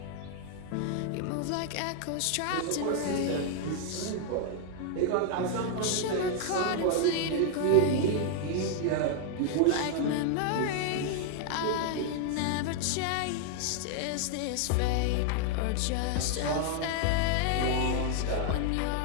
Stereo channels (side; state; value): both; different; correlation 0.00